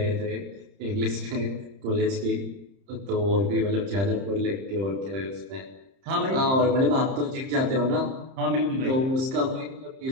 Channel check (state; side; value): late; left; 30 ms